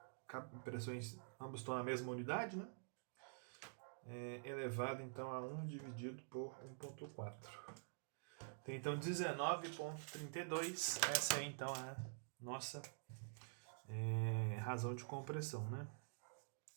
pressões, ambos estão na mesma unidade, né? Elevado, então, a 1 dividido por 1,4. Tem, então, 19,32. Essa é, então, a nossa razão de compressão, né?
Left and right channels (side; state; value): left; silent; digital silence